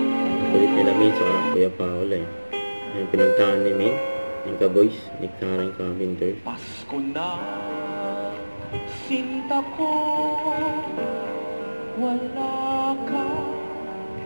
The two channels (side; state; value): both; inverted; correlation -1.00